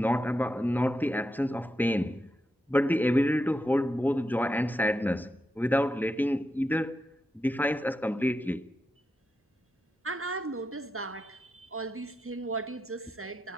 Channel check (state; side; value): normal; both; correlation 0.87